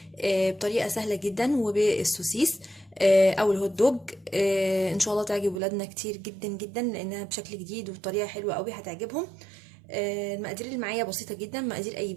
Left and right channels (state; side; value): drops out; left; at 5.6 s